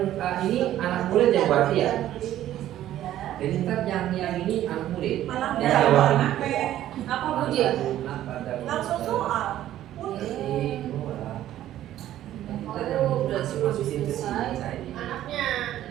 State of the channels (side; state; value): left; quieter; 12.8 dB